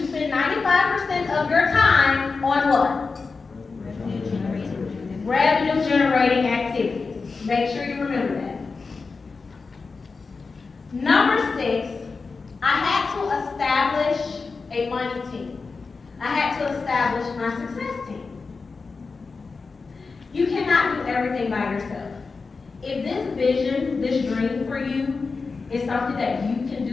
spend 95% of your time on what? Revenue generating activities. Make sure you remember that. Number 6, I had to establish a money team. I had to establish my success team. You cannot do everything by yourself. If this vision, this dream for you is something that you can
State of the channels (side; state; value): right; quieter; 4.4 dB